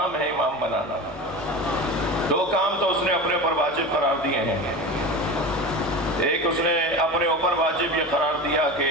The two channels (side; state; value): both; normal; correlation 0.28